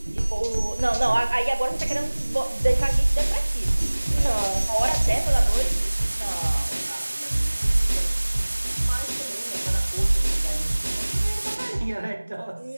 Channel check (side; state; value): both; inverted; correlation -1.00